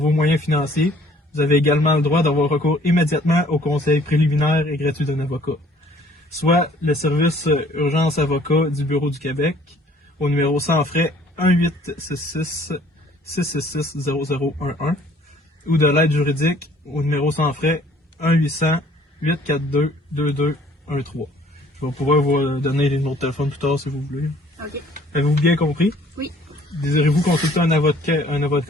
moyens financiers, vous avez également le droit d'avoir recours immédiatement au conseil préliminaire et gratuit d'un avocat, soit le service urgence avocat du Bureau du Québec, au numéro sans frais 666-0011 ou de l'aide juridique au numéro sans frais 1-800-842-2213. Je vais pouvoir vous donner les numéros de téléphone plus tard si vous voulez. OK. Avez-vous bien compris? Oui. Désirez-vous consulter un avocat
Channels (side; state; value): both; normal; correlation 0.57